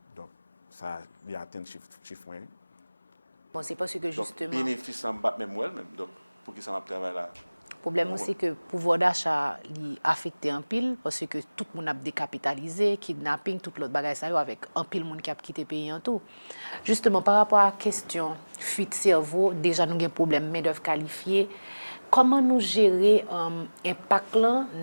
Donc, ça, il y a atteint chiffre moyen. Bon, c'est parce que justement... Donc, bénéfice en bas, même moi-même. Donc, pour qui ça m'a travaillé là? Le problème, c'est que le pouvoir d'achat est affecté en pile parce que tout le monde a décapitalisé, kidnapping, tout l'autre bagage avec un pile monde qui a quitté le pays en tout. Justement, par rapport à la question fuite cerveau, déjà nous avons un problème main-d'œuvre qualifiée. Comment nous gérer l'impact là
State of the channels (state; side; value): inverted; both; correlation -1.00